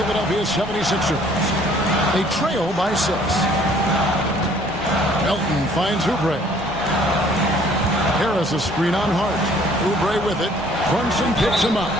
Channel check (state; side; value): normal; both; correlation 0.58